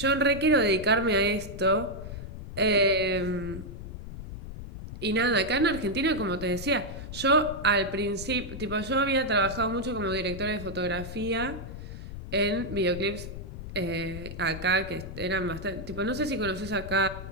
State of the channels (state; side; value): noise; left; rumble, 10 dB below the sound